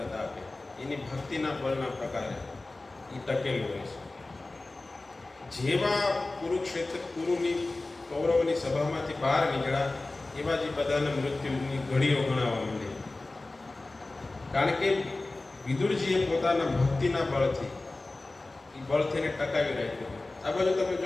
એની ભક્તિના બળના પ્રકારે એ ટકેલું હોય છે. જેવા કુરુની કૌરવની સભામાંથી બહાર નીકળ્યા એવા જ બધાના મૃત્યુની ઘડીઓ ગણાવવા માંડી. કારણ કે વિદુરજીએ પોતાના ભક્તિના બળથી એ બળથીને ટકાવી રાખ્યું. આ બાજુ તમે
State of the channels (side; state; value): right; quieter; 3.1 dB